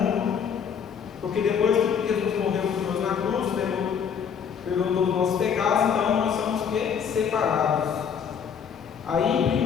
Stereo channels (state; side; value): quieter; right; 7.3 dB